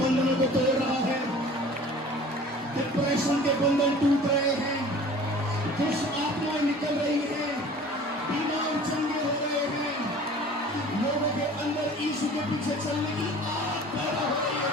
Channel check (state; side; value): normal; both; correlation 0.45